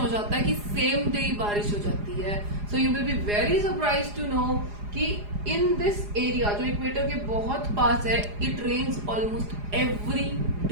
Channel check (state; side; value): late; left; 4.9 ms